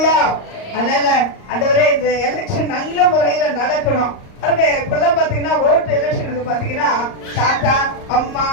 அதனால ஆண்டவரே, இந்த எலெக்ஷன் நல்ல முறையில நடக்கணும். இப்பெல்லாம் பாத்தீங்கன்னா ஓட்டு எலெக்ஷனுக்கு பாத்தீங்கன்னா தாத்தா அம்மா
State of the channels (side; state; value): right; late; 38 ms